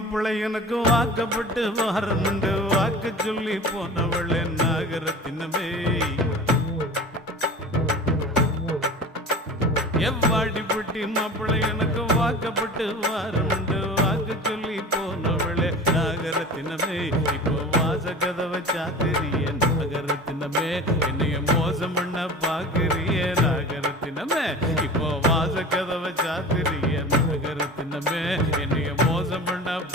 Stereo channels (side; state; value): both; normal; correlation 0.36